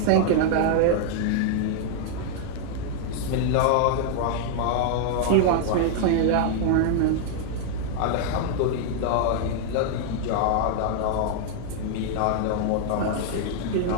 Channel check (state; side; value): different; both; correlation -0.01